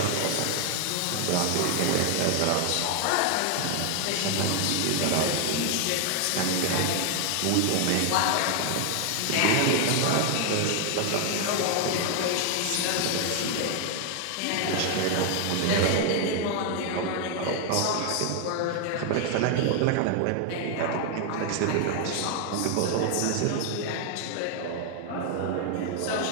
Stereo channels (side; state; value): both; different; correlation 0.00